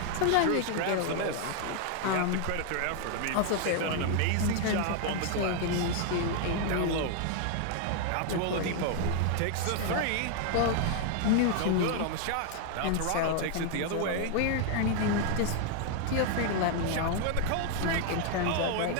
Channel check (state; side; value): different; both; correlation 0.00